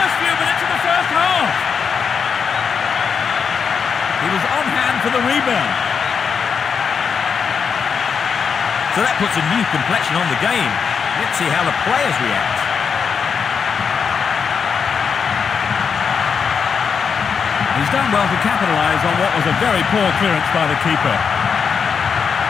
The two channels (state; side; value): quieter; right; 6.3 dB